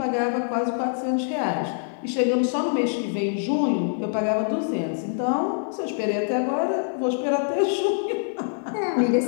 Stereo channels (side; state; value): right; silent; digital silence